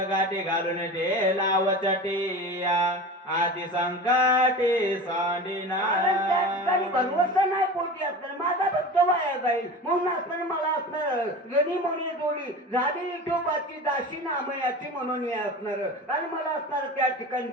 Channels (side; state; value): both; normal; correlation 0.32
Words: गाठी घालून ठेला वचटी आधी संकटे सांडिना त्या ठिकाणी भरवसा नाही पोटी असणार माझा भक्त वाया जाईल म्हणून असणार मला असणार गणी म्हणे जोडी झाली विठोबाची दाशी नामयाची म्हणून हे असणार आणि मला असणार त्या ठिकाणी